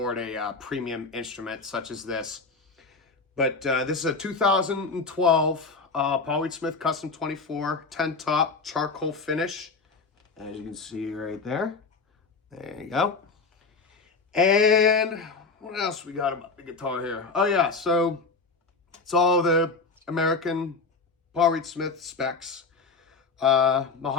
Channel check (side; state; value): right; quieter; 4.3 dB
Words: premium instrument such as this. But this is a 2012 Paul Reed Smith Custom 24 10 top charcoal finish, as you can see right there. There you go. And what else we got about the guitar here? Oh yeah, so it's all the American Paul Reed Smith specs.